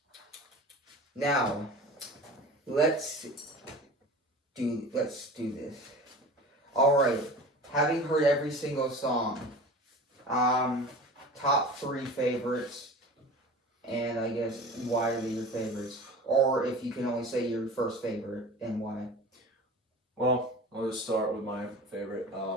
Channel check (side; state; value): both; normal; correlation 0.37